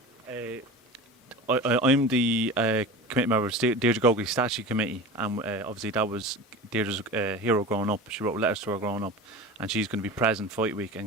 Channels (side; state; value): both; normal; correlation 0.33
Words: I'm the committee member of the Deirdre Gogarty Statue Committee, and obviously that was Deirdre's hero growing up. She wrote letters to her growing up, and she's going to be present fight week,